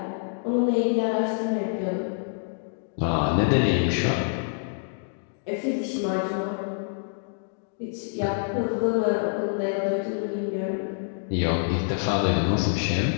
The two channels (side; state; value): right; silent; digital silence